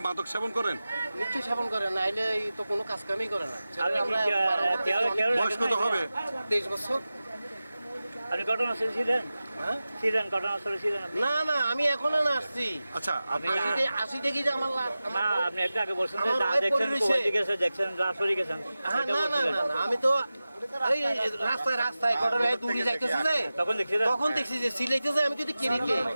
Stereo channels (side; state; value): both; inverted; correlation -0.96